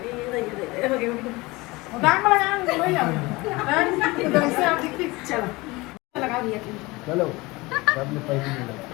दाग में लगा लो यार उधर से आप देखिए चलो लगा दिया चलो सब ने पैसे मिला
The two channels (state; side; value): quieter; right; 22.6 dB